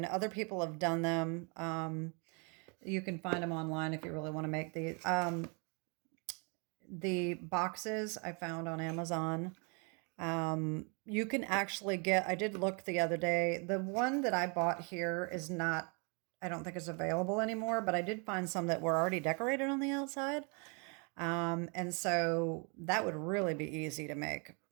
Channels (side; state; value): left; quieter; 34.9 dB